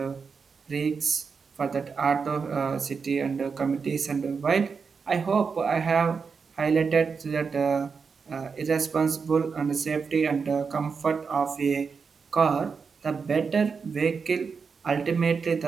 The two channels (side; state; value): left; quieter; 5.5 dB